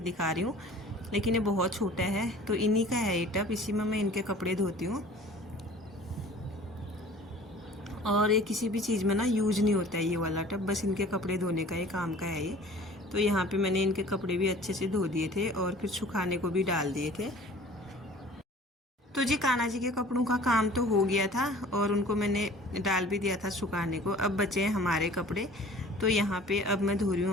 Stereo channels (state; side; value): normal; both; correlation 0.47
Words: दिखा रही हूँ, लेकिन ये बहुत छोटा है। तो इन्हीं का है ये टब, इसी में मैं इनके कपड़े धोती हूँ। और ये किसी भी चीज़ में ना यूज नहीं होता है ये वाला टब, बस इनके कपड़े धोने का ये काम का है ये। तो यहाँ पे मैंने इनके कपड़े भी अच्छे से धो दिए थे और फिर सुखाने को भी डाल दिए थे। तो जी कान्हा जी के कपड़ों का काम तो हो गया था और उनको मैंने डाल भी दिया था सुखाने को। अब बचे हैं हमारे कपड़े, तो यहाँ पे अब मैं धो रही हूँ